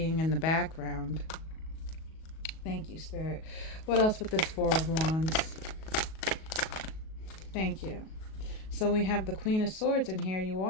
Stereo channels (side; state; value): right; late; 37 ms